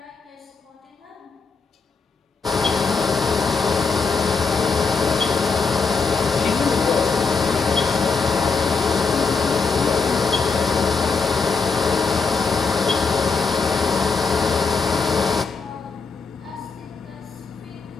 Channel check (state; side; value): quieter; right; 4.8 dB